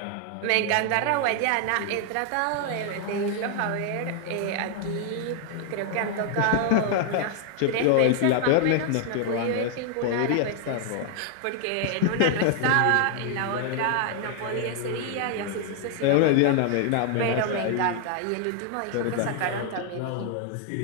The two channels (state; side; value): different; both; correlation 0.00